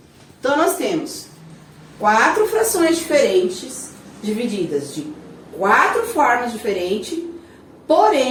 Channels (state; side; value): identical; both; correlation 1.00